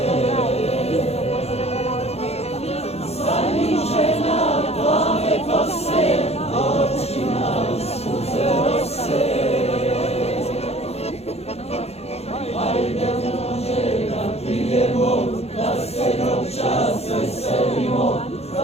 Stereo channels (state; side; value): late; right; 0.30 ms